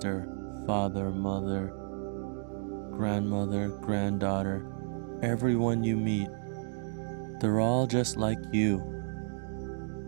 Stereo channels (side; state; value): left; silent; digital silence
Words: father, mother, grandmother, granddaughter, everyone you meet, they're all just like you.